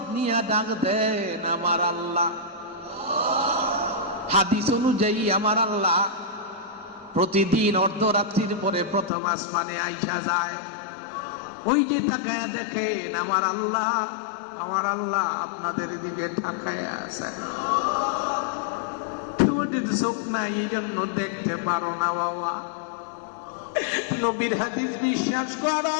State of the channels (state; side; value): drops out; right; at 9.1 s